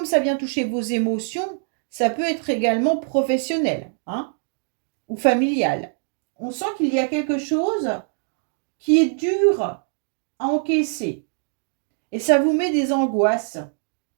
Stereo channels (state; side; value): silent; left; digital silence